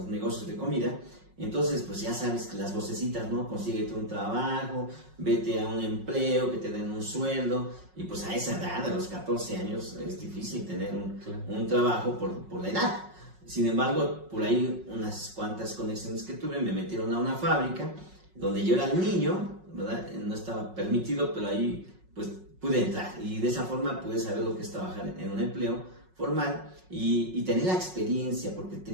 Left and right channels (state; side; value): late; left; 5.4 ms